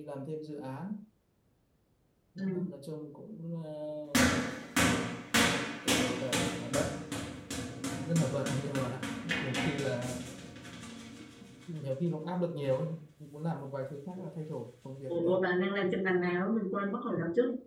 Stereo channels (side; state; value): both; identical; correlation 1.00